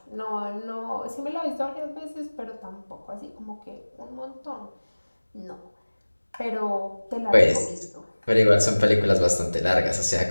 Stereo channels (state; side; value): inverted; both; correlation -1.00